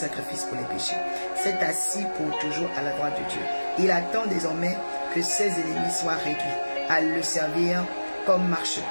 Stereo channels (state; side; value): inverted; both; correlation -1.00